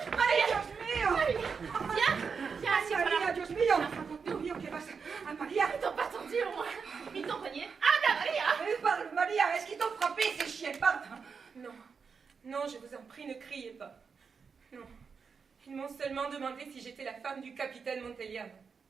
Dios mío. Viens, assieds-toi là. Maria, Dios mío. Dios mío, ¿qué pasa? Ah, Maria. Ils t'ont pas tendu au moins. Ils t'ont cogné. Anda, Maria! Parle, Maria, est-ce qu'ils t'ont frappé, ces chiens? Parle. Non, non, je vous en prie, ne criez pas. Non, ils m'ont seulement demandé si j'étais la femme du capitaine Monteliano.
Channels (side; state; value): left; quieter; 5.7 dB